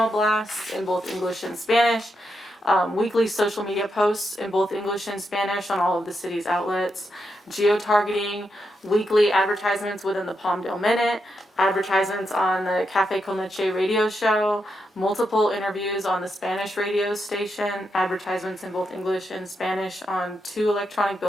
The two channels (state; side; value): normal; both; correlation 0.83